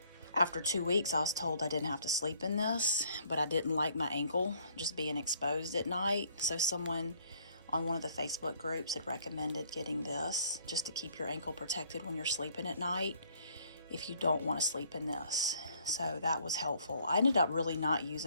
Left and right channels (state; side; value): inverted; both; correlation -0.63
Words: After 2 weeks, I was told I didn't have to sleep in this, but I didn't like my ankle just being exposed at night. So someone on one of the Facebook groups had recommended getting this just to keep your ankle protected when you're sleeping at night if you don't want to sleep in this. So that was helpful. I ended up really not